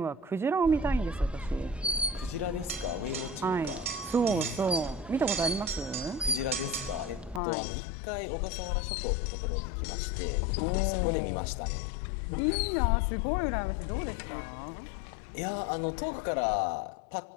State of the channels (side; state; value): right; drops out; at 7.4 s